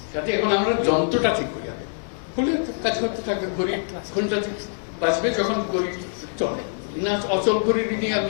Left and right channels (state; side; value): silent; right; digital silence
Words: যাতে এখন আমরা যন্ত্রটা ঠিক করি, হলে কাজ করতে থাকবে। গরিব কোনটা বাঁচবে যখন গরিব চলে না, অচল গরিব নিয়ে